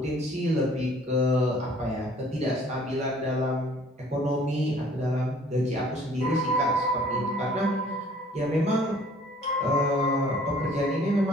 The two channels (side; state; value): both; normal; correlation 0.55